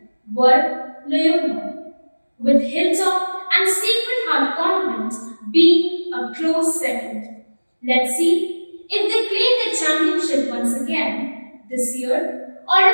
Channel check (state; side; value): inverted; both; correlation -1.00